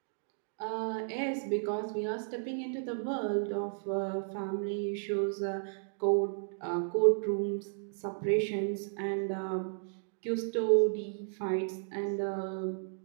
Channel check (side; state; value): left; silent; digital silence